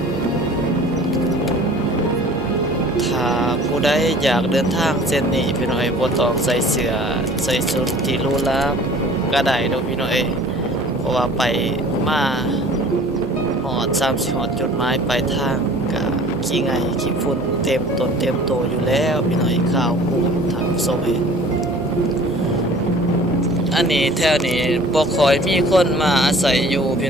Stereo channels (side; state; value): both; normal; correlation 0.47